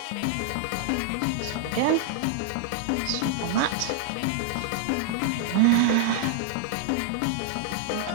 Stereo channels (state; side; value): different; both; correlation -0.01